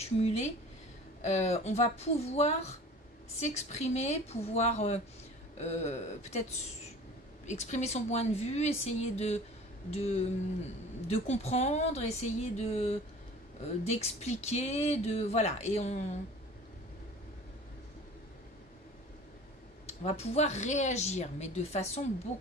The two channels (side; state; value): both; normal; correlation 0.43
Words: on va pouvoir s'exprimer, pouvoir peut-être exprimer son point de vue, essayer de comprendre, essayer d'expliquer, voilà, et on va pouvoir réagir, mais de façon